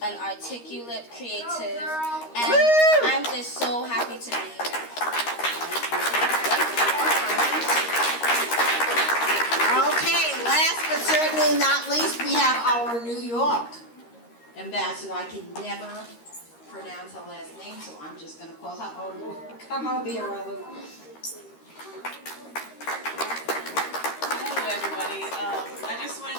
an articulate, creative, and I'm just so happy to be here. Okay, last but certainly not least, we have our New York ambassador. I can never pronounce her last name, so I'm just going to call her Olu. Come over here, Olu. everybody. I just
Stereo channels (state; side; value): late; right; 13 ms